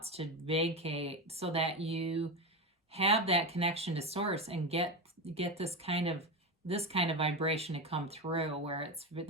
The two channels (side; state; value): both; normal; correlation 0.17